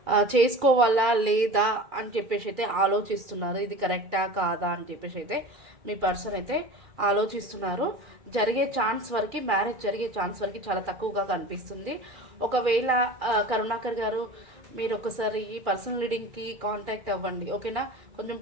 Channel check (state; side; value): late; left; 2.4 ms